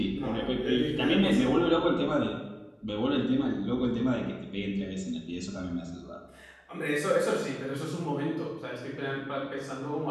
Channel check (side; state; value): both; identical; correlation 1.00